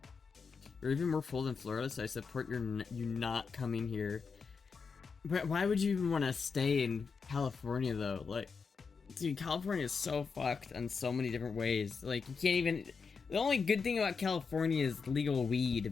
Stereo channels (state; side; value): quieter; right; 5.4 dB